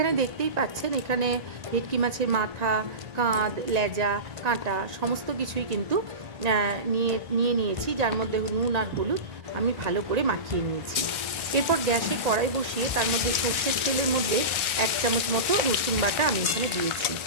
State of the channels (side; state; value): left; late; 1.9 ms